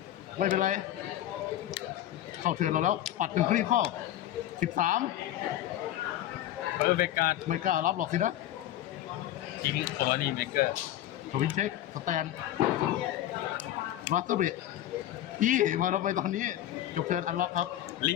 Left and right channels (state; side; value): quieter; right; 12.9 dB